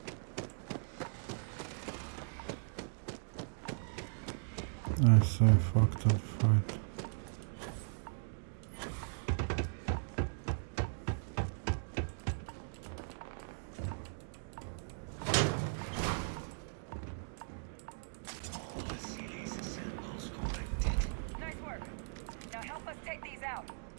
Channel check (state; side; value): silent; left; digital silence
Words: I say fuck that fight. Nice work. Now help us take these out.